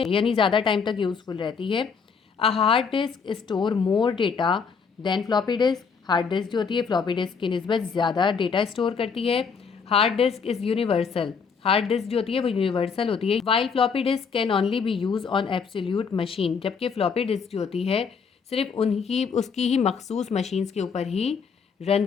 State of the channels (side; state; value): right; quieter; 5.8 dB